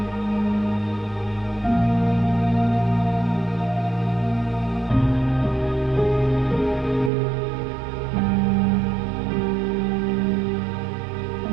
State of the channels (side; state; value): left; drops out; at 7.1 s